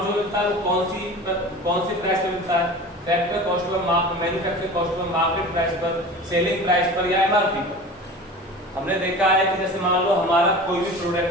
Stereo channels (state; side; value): normal; both; correlation 0.36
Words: जो मिलता है वो कौन सी प्राइस पे मिलता है? Factor cost per, manufacturing cost per, market price पर, सेलिंग प्राइस पर, या एमआरपी पर। हमने देखा है कि जैसे मान लो हमारा कोई भी